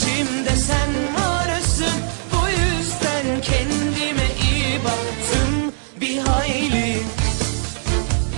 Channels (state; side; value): silent; left; digital silence